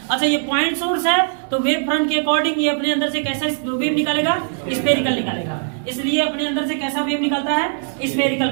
अच्छा ये पॉइंट सोर्स है तो वेव फ्रंट के अकॉर्डिंग ये अपने अंदर से कैसा वेव निकालेगा? स्फेरिकल निकालेगा। इसलिए अपने अंदर से कैसा वेव निकालता है? स्फेरिकल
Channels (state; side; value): silent; left; digital silence